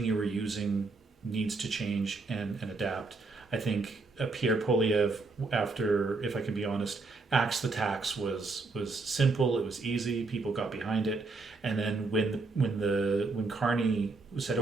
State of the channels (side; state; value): left; quieter; 3.7 dB